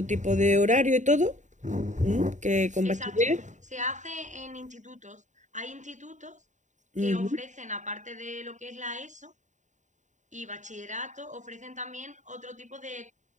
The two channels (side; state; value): left; late; 0.35 ms